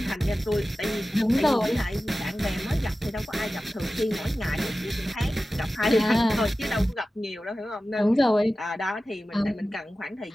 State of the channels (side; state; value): both; normal; correlation 0.95